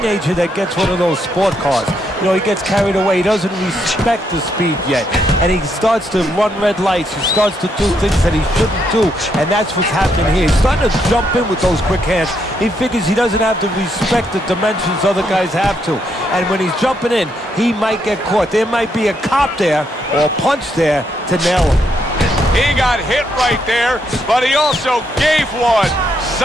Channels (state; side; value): normal; both; correlation 0.76